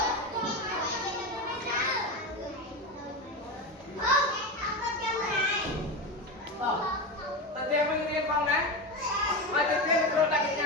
tự tiên mình riêng phòng đấy mà tự tiên mình đặt cái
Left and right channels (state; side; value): normal; both; correlation 0.19